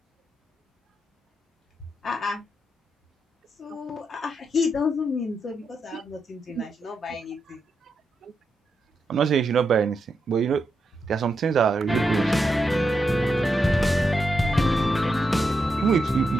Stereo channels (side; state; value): both; normal; correlation 0.84